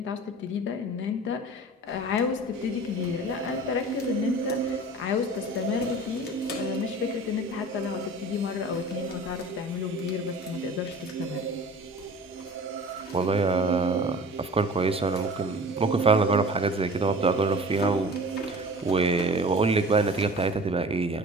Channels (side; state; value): both; normal; correlation 0.41